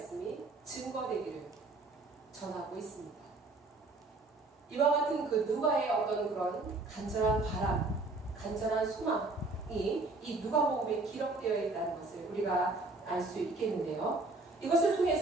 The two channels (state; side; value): quieter; left; 3.3 dB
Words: 증거되기를 전하고 있습니다. 이와 같은 그 누가의 어떤 그런 간절한 바람, 간절한 소망이 이 누가복음에 기록되어 있다는 것을 우리가 알 수 있겠는데요. 이것을